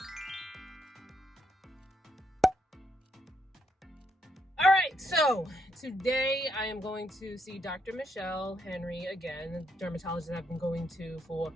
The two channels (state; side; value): normal; both; correlation 0.75